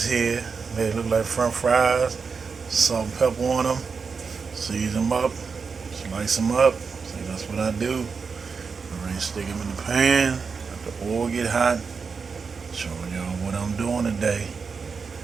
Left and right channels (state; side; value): quieter; left; 5.3 dB